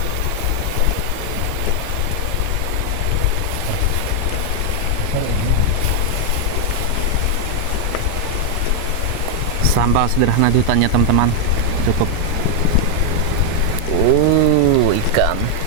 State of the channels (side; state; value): both; different; correlation 0.00